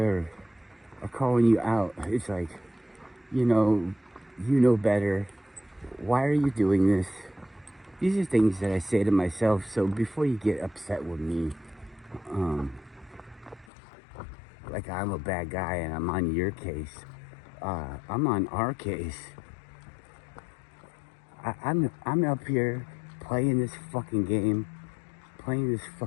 calling you out. It's like, you know better. Why are you doing this? These are things that I say to myself. So before you get upset with me, like I'm a bad guy and I'm on your case, I'm on our case. I'm up here playing this fucking game, playing this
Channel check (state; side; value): drops out; right; at 13.7 s